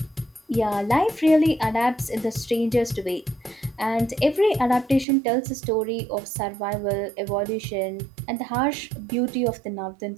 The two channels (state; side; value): drops out; left; at 5.1 s